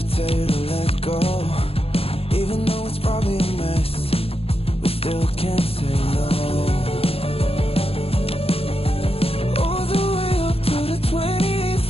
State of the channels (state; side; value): late; right; 0.28 ms